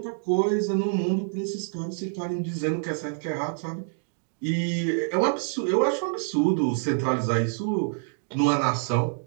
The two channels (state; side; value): silent; left; digital silence